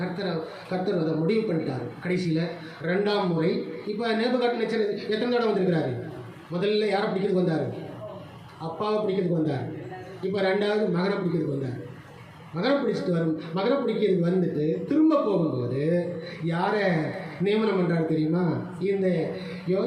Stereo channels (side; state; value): both; identical; correlation 1.00